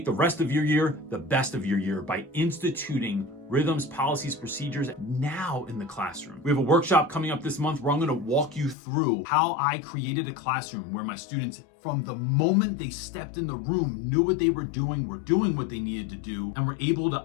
the rest of your year the best of your year by instituting rhythms, policies, procedures now in the classroom. We have a workshop coming up this month where I'm going to walk you through how I created a classroom where my students, from the moment they stepped in the room, knew what they were doing what they needed to do, and were able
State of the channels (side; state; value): right; drops out; at 8.8 s